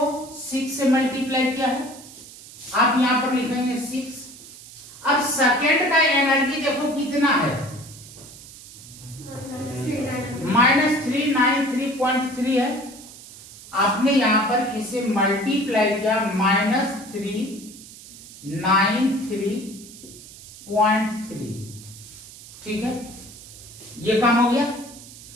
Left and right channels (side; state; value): right; noise; hiss, 18 dB below the sound